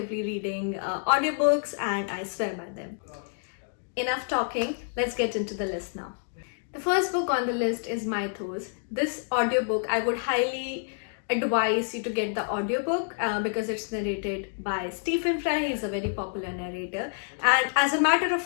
reading audiobooks, and I swear by them. Enough talking, let's get into the list now. The first book on the list is Mythos. This audiobook, I would highly advise you to get the audiobook because it's narrated by Stephan Fry. He's a very popular narrator, and as a matter of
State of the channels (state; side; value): silent; right; digital silence